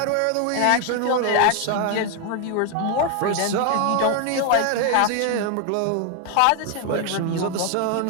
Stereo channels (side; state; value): both; different; correlation 0.01